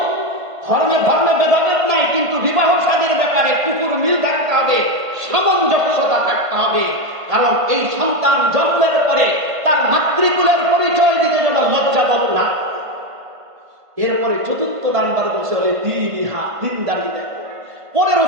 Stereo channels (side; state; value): left; late; 1.5 ms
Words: ধর্মে ভেদাভেদ নাই, কিন্তু বিবাহ শাদীর ব্যাপারে কুকুর মিল থাকতে হবে, সামঞ্জস্যতা থাকতে হবে। কারণ এই সন্তান জন্মের পরে এরপরে চতুর্থ নাম্বার বলছে বলে দিনদারি দেখো। পরে